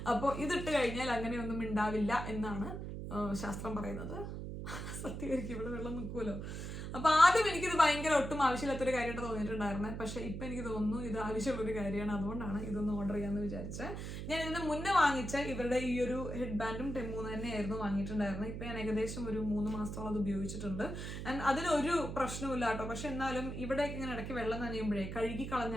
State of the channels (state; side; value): noise; right; hum, 6 dB below the sound